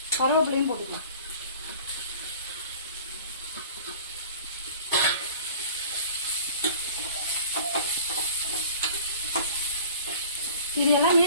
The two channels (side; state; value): both; inverted; correlation -0.44